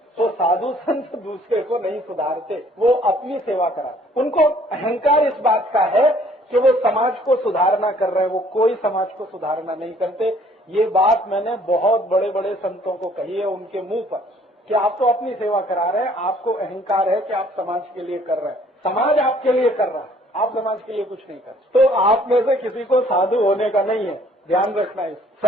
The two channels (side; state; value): both; normal; correlation 0.59